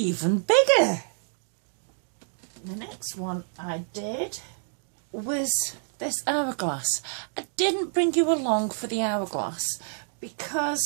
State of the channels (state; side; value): silent; left; digital silence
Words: bigger. The next one I did was this hourglass. I didn't bring you along for the hourglass